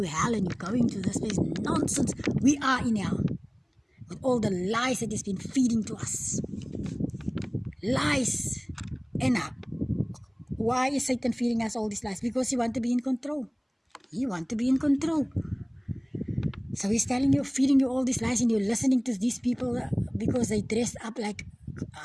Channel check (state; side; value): identical; both; correlation 1.00